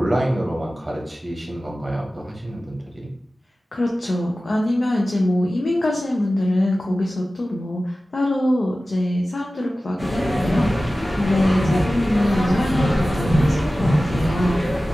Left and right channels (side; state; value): both; normal; correlation 0.96